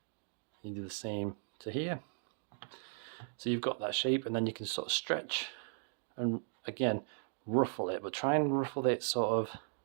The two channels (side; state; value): left; silent; digital silence